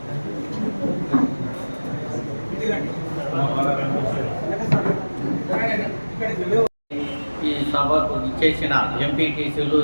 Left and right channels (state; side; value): inverted; both; correlation -1.00